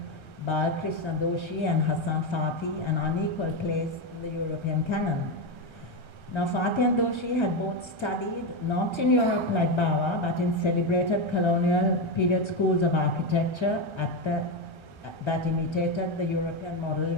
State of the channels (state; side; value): late; right; 1.3 ms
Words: Balkrishna Doshi and Hassan Fathi an unequal place in the European canon. Now, Fathi and Doshi had both studied not in Europe like Bawa, but in celebrated colonial period schools of architecture that imitated the European model